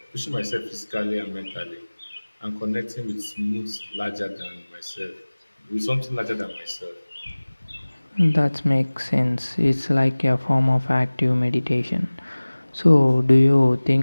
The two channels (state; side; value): inverted; both; correlation -1.00